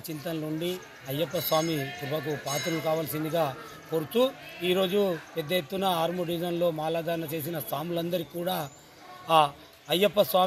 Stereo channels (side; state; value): both; identical; correlation 1.00